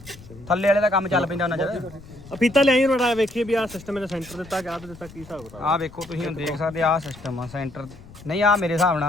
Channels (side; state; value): left; noise; rumble, 19 dB below the sound